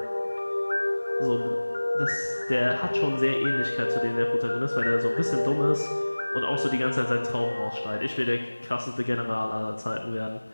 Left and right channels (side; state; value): both; inverted; correlation -1.00